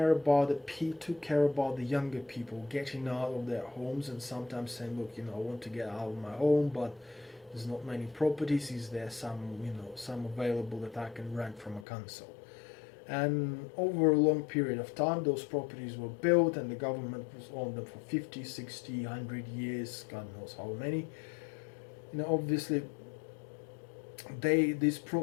about the younger people getting out of their homes and sometimes saying, look, I want to get out of my home, but there's not many properties. Is there some available that I can rent from a council? And over a long period of time, those properties were built, and the government was on them for 50, 60, 100 years, God knows how many. Obviously, these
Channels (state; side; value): drops out; right; at 11.9 s